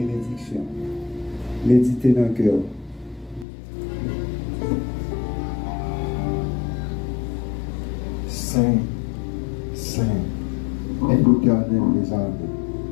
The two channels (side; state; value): right; drops out; at 3.5 s